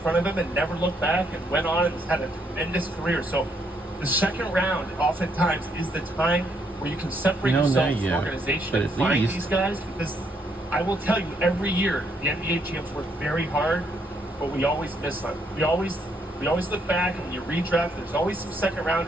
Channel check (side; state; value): both; normal; correlation 0.73